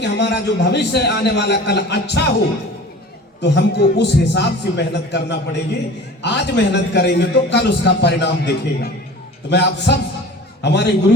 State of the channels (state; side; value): normal; both; correlation 0.41